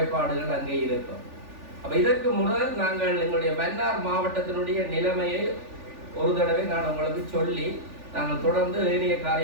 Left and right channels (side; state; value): left; late; 3.4 ms